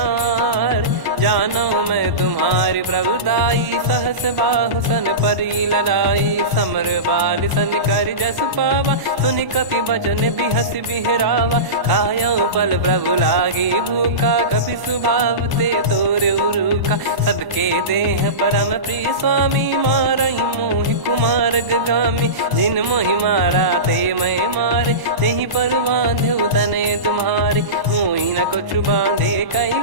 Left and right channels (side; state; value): left; late; 1.1 ms